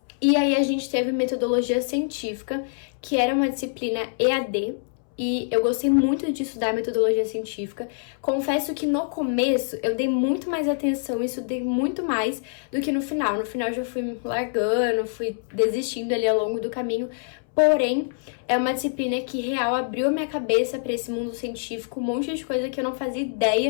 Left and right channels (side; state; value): right; silent; 62 dB below the other